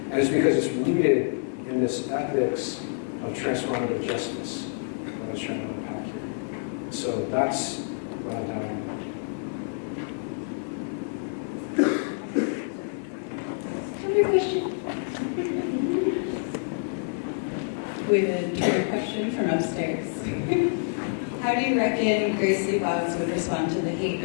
it's because it's rooted in this ethics of transformative justice that I was trying to unpack here. And so that's what I'm down with. Twitter question. We have a Twitter question from upstairs. How do you reckon Grace Lee Boggs would respond to the hate,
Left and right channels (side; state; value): right; silent; digital silence